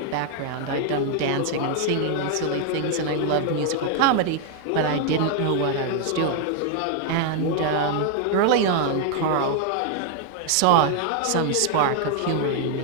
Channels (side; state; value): both; different; correlation 0.00